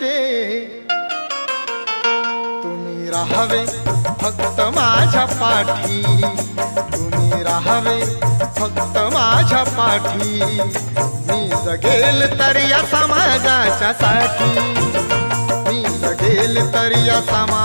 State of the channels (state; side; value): inverted; both; correlation -1.00